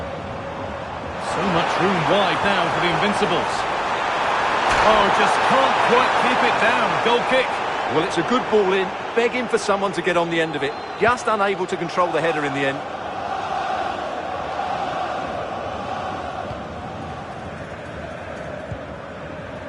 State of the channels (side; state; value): both; identical; correlation 1.00